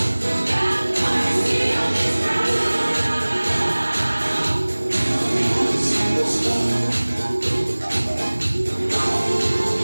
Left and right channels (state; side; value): inverted; both; correlation -1.00